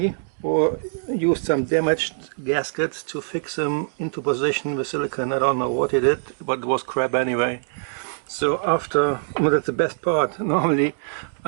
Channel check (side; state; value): left; silent; digital silence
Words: or used some damaged gaskets to fix them into position with silicone. I don't know what he did, but it was crap anyway. So after, well, that's the best part, normally